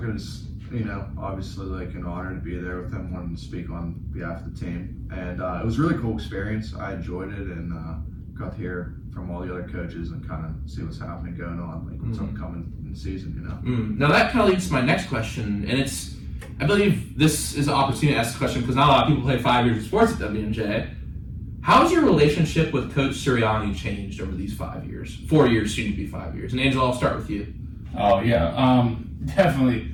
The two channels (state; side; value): identical; both; correlation 1.00